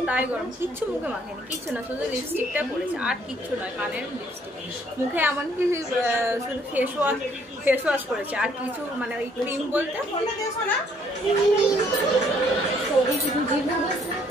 গরম। কিচ্ছু মুখে মাখেনি, কিচ্ছু না, শুধু লিপস্টিকটা পরেছে, আর কিচ্ছু নয়। কানের লিপস্টিক, মুখে এমনকি শুধু ফেস ওয়াশ করেছে, আর কিছু মানে ওই ক্রিম বলতে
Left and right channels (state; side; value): normal; both; correlation 0.65